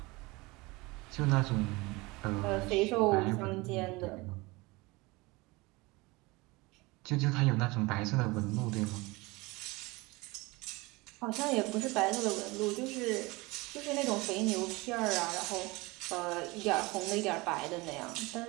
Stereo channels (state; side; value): quieter; left; 23.5 dB